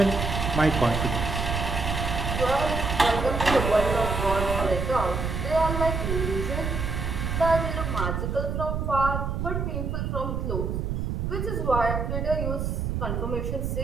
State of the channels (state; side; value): noise; right; rumble, 2 dB below the sound